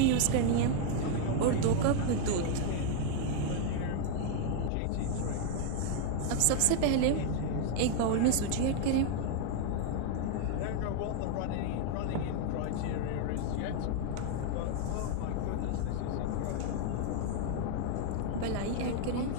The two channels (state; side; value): different; both; correlation 0.00